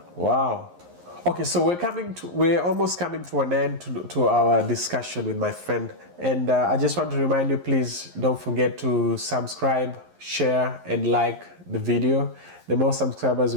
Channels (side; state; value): left; late; 11 ms